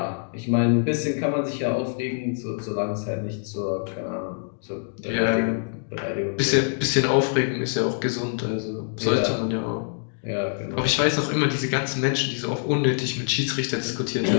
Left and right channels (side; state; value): right; silent; digital silence